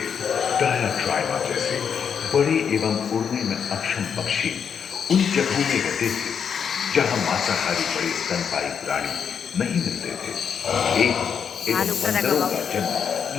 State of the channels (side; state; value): right; quieter; 7.2 dB